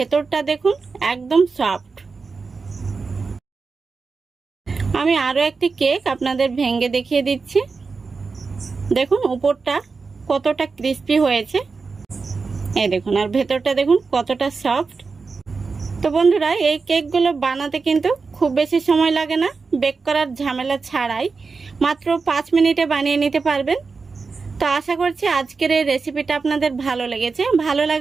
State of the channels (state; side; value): quieter; left; 4.6 dB